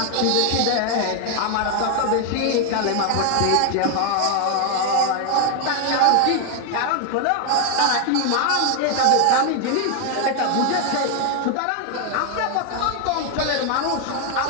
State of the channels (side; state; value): both; different; correlation 0.00